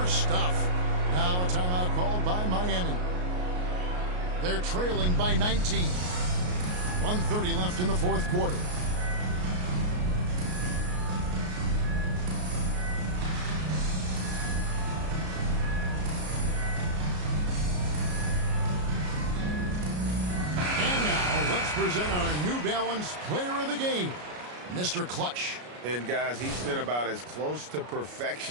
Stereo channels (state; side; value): late; left; 33 ms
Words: stuff. Now a timeout called by Miami. They're trailing by 19. 1:30 left in the fourth quarter. Present our New Balance Player of the Game, Mr. Clutch. And guys, he's been about as close to